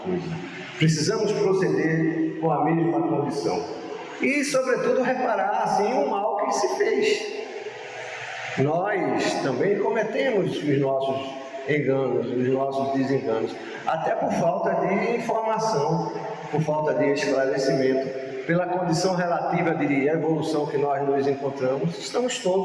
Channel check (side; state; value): both; identical; correlation 1.00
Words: Precisamos proceder com a mesma condição. E, sobretudo, reparar, assim, o mal que se fez. Nós também cometemos os nossos enganos, os nossos desenganos, até por falta de informação, por falta de esclarecimento. Pela condição relativa de evolução que nós nos encontramos, estamos